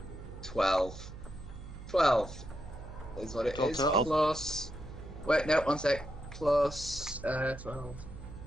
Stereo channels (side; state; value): right; noise; hum, 13 dB below the sound